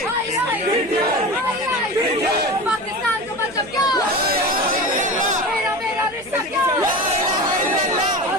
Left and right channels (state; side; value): noise; right; hum, 23 dB below the sound